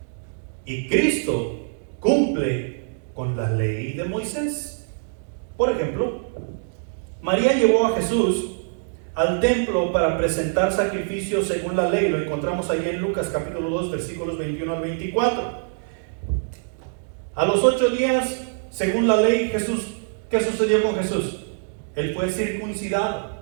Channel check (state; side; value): silent; left; digital silence